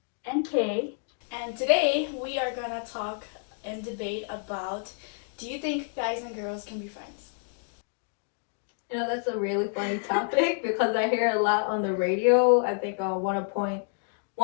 and Kay. And today we are gonna talk and debate about, do you think guys and girls can be friends? That's a really funny topic because I hear a lot on the radio. I think on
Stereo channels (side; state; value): right; silent; 59 dB below the other